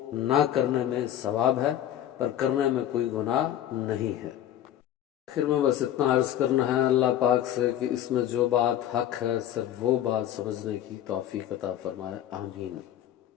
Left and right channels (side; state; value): right; quieter; 11.5 dB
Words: نہ کرنے میں ثواب ہے، پر کرنے میں کوئی گناہ نہیں ہے۔ آخر میں بس اتنا عرض کرنا ہے اللہ پاک سے کہ اس میں جو بات حق ہے صرف وہ بات سمجھنے کی توفیق عطا فرمائے، آمین۔